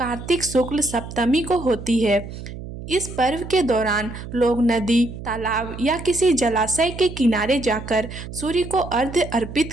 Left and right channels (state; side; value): noise; right; hum, 11 dB below the sound